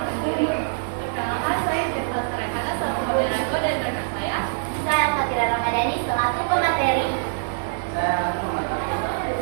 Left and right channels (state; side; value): silent; left; 63 dB below the other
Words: diri. Perkenalkan, saya Jenderal Sarekana selaku moderator dan rekan saya. Saya Fatira Ramadhani selaku pemateri.